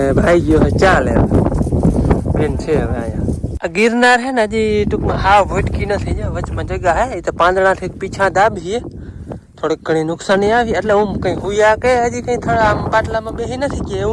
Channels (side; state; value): both; identical; correlation 1.00